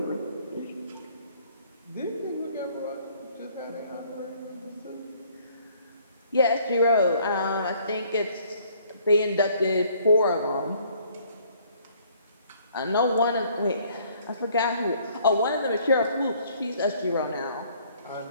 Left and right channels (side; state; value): both; inverted; correlation -0.61